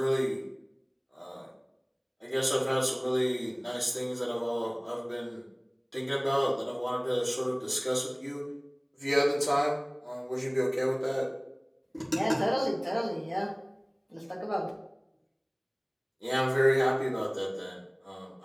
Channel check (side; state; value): both; identical; correlation 1.00